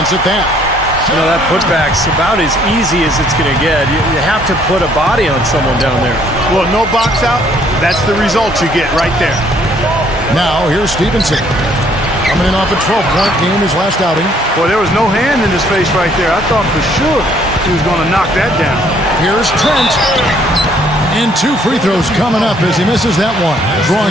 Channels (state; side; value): normal; both; correlation 0.64